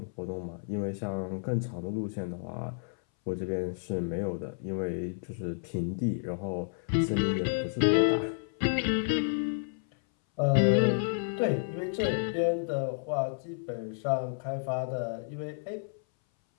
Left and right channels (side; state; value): right; silent; 57 dB below the other